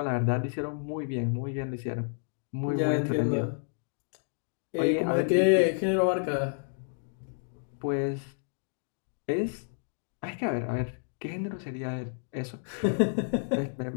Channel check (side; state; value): right; silent; digital silence